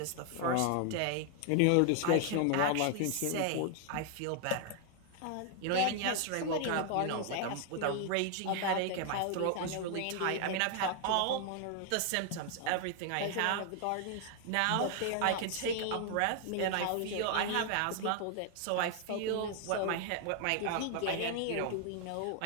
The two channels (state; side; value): different; both; correlation 0.00